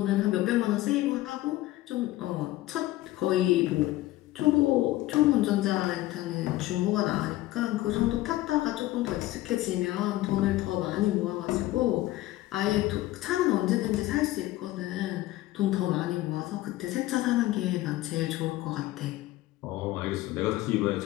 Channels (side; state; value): right; quieter; 16.6 dB